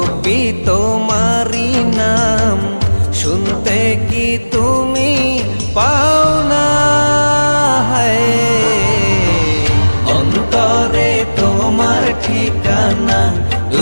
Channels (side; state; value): both; inverted; correlation -1.00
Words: তোমারি নাম, শুনতে কি তুমি পাও না? অন্তরে তোমার ঠিকানা, দু